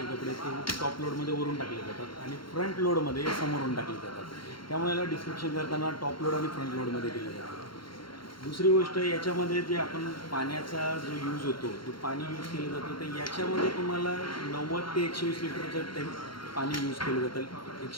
कपडे ते टॉप लोडमध्ये वरून टाकले जातात आणि फ्रंट लोडमध्ये समोरून टाकले जातात. त्यामुळे याला डिस्क्रिप्शन करताना टॉप लोड आणि फ्रंट लोडमध्ये दिलं जातं. दुसरी गोष्ट याच्यामध्ये जे आपण पाण्याचा जो यूज होतो तो पाणी यूज केलं जातं तर याच्यामध्ये तुम्हाला 90 ते 120 लिटरचं पाणी यूज केलं जातं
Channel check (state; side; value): late; right; 0.73 ms